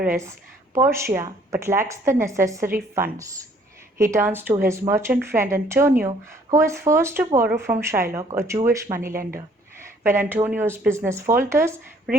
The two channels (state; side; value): normal; both; correlation 0.61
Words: Portia but lacks the necessary funds. He turns to his merchant friend Antonio, who is forced to borrow from Shylock, a Jewish moneylender. When Antonio's business falters,